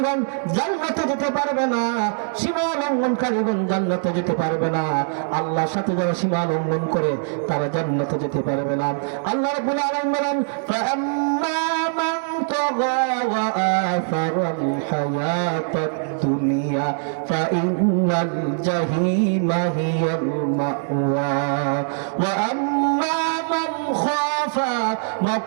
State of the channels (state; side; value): silent; left; digital silence